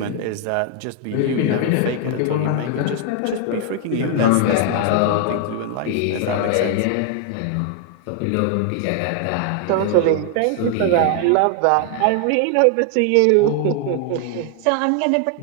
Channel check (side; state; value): both; different; correlation 0.00